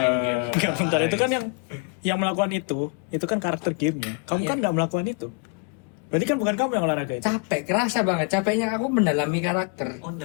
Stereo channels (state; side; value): quieter; right; 34.3 dB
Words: game. Enggak, bentar, itu kan yang melakukan itu kan karakter gamenya. Kamu kan nggak melakukan itu. Berarti kan bukan kamu yang olahraga itu. Capek, kerasa banget. Capeknya aku mendalami karakter. Oh,